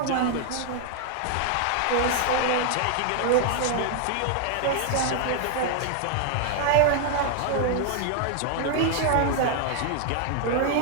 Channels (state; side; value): different; both; correlation 0.00